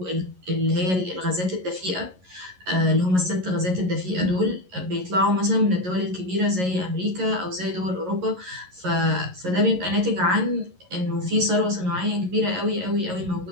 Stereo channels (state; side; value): late; left; 11 ms